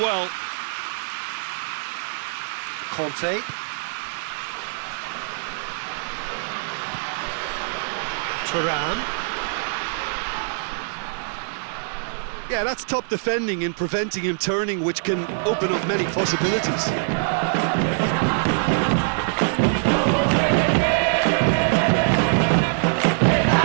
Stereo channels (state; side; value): silent; left; digital silence